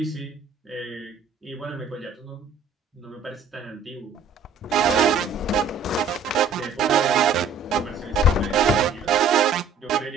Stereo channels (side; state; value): left; quieter; 4.6 dB